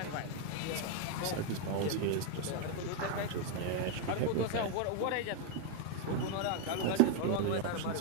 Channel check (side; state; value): both; different; correlation 0.01